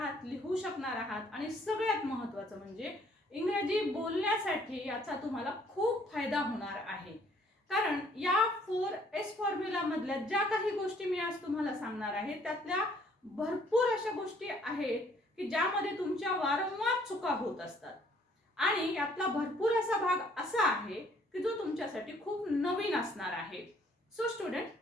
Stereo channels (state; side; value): normal; both; correlation 0.62